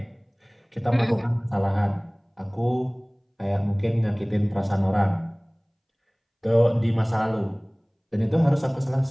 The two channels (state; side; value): identical; both; correlation 1.00